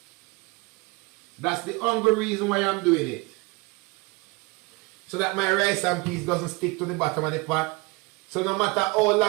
That's the only reason why I'm doing it. So that my rice and peas doesn't stick to the bottom of the pot. So no matter how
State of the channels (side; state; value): left; quieter; 25.5 dB